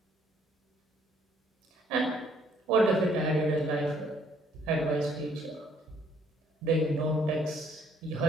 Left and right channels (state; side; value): normal; both; correlation 0.64